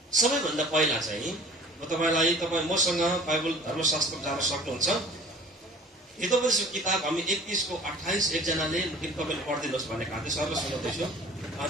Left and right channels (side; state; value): both; normal; correlation 0.46